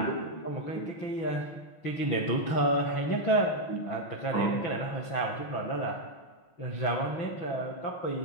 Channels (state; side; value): late; right; 6.0 ms